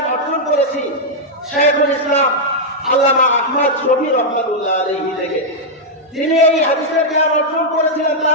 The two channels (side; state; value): both; normal; correlation -0.04